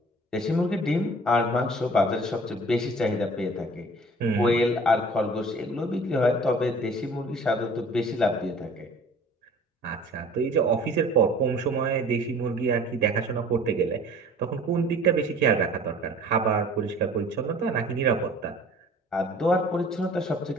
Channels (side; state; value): both; normal; correlation 0.48